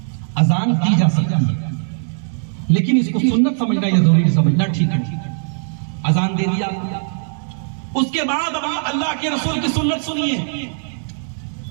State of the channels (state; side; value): silent; left; digital silence